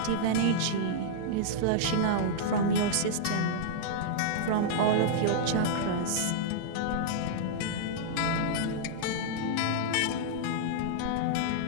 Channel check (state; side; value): different; both; correlation -0.02